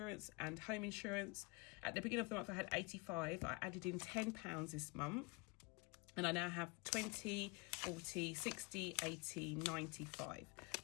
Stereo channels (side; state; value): right; quieter; 27.2 dB